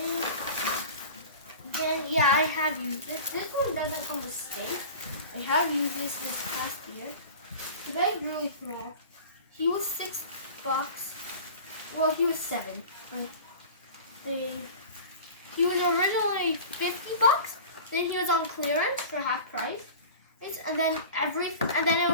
Then yeah, I have used this. This one doesn't come with stake. I have used this past year. The bag really small. He was $6. Well, he was 7. He was originally $50. Then he was on clearance for half price. And then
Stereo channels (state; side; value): inverted; both; correlation -0.37